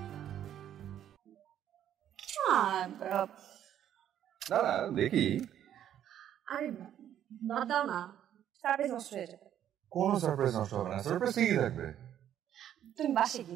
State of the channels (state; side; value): quieter; left; 10.5 dB